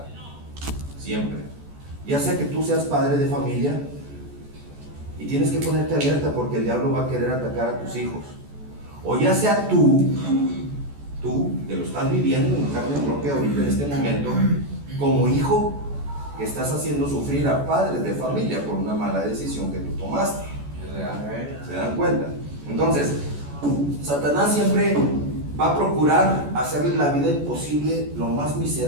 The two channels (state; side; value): late; left; 14 ms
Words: Siempre. Ya sea que tú seas padre de familia y tienes que ponerte alerta porque el diablo va a querer atacar a tus hijos, o ya sea tú que lo estás viviendo en carne propia ahorita en este momento, como hijo que estás haciendo sufrir a padres de familia por una mala decisión que tú tomaste. ¿Se dan cuenta? Entonces, Satanás siempre va a procurar hacerle la vida imposible, lo más